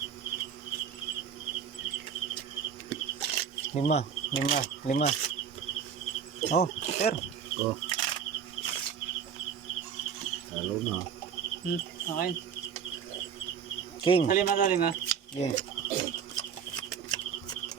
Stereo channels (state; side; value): quieter; left; 7.4 dB